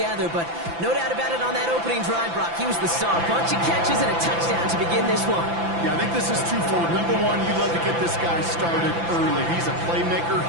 But no doubt about it, on that opening drive, Brock, he was the star. Bunch of catches and a touchdown to begin this one. Yeah, I think this is twofold. Number one, you love to get this guy started early. He's a playmaker.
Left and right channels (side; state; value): left; late; 5.9 ms